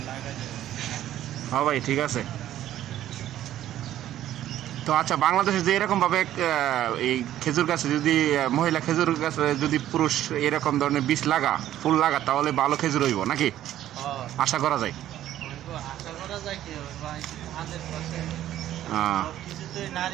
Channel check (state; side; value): quieter; left; 12.5 dB